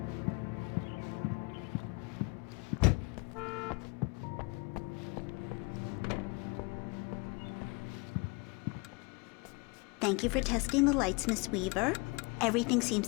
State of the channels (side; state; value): right; quieter; 29.0 dB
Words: Thank you for testing the lights, Miss Weaver. Everything seems